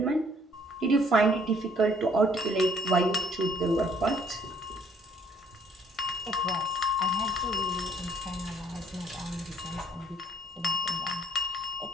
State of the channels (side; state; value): both; normal; correlation 0.63